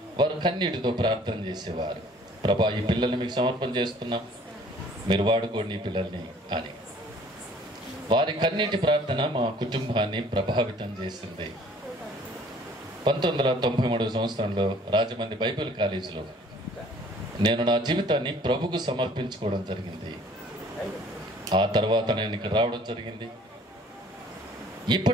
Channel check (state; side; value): normal; both; correlation 0.55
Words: వారు కన్నీటితో ప్రార్థన చేసేవారు. ప్రభా, ఈ పిల్లల్ని మీకు సమర్పణ చేస్తున్నాం, మీరు వాడుకోండి ఈ పిల్లల్ని అని. వారి కన్నీటి ప్రార్థన మా కుటుంబాన్ని ప్రభావితం చేసింది. 1993 సంవత్సరంలో రాజమండ్రి బైబిల్ కాలేజీలో నేను నా జీవితాన్ని ప్రభుకు సమర్పించుకోవడం జరిగింది. ఆ తర్వాత నేను ఇక్కడ రావడం జరిగింది.